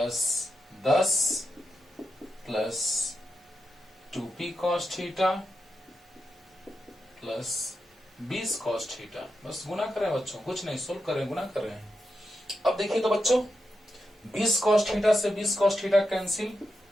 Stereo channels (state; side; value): normal; both; correlation 0.87